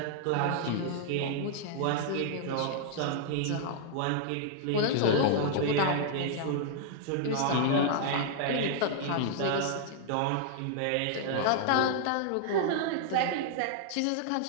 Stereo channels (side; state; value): both; different; correlation -0.01